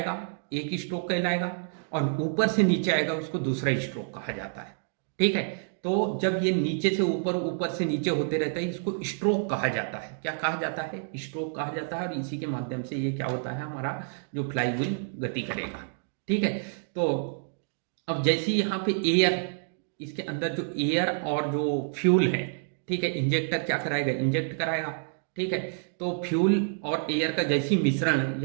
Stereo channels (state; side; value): silent; left; digital silence